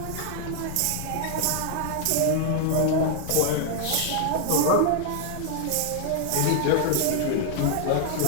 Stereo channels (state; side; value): different; both; correlation 0.00